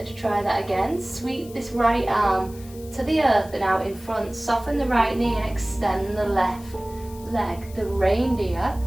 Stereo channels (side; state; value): left; noise; hiss, 21 dB below the sound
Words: try that again. Sweep this right arm to the earth and out in front. Soften the right knee and extend the left leg, the reindeer.